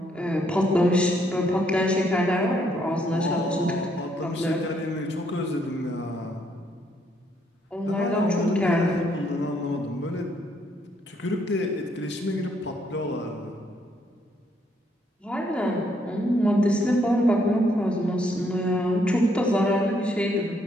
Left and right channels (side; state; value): both; normal; correlation 0.71